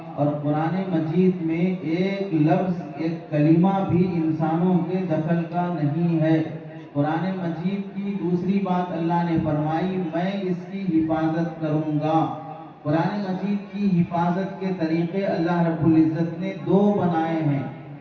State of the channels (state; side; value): identical; both; correlation 1.00